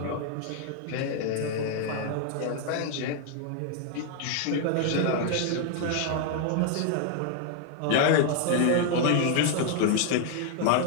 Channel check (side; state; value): both; different; correlation 0.00